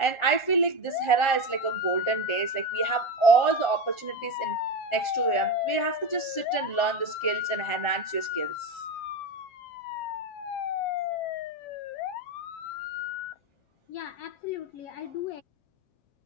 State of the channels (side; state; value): right; late; 7.4 ms